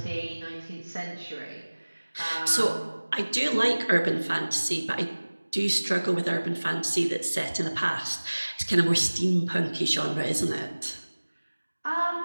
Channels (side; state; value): both; inverted; correlation -1.00